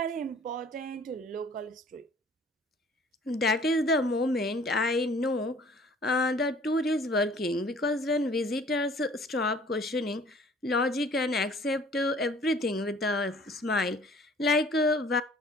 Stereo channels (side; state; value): both; normal; correlation 0.53